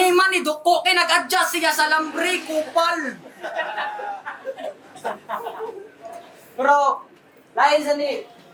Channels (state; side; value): identical; both; correlation 1.00